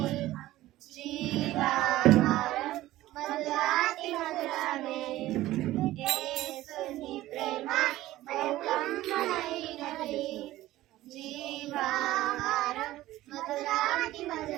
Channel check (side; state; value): left; quieter; 15.9 dB